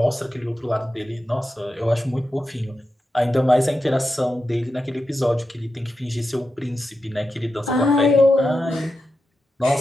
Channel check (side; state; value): both; normal; correlation 0.89